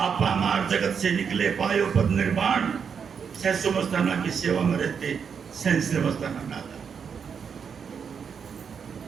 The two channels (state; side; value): quieter; left; 6.7 dB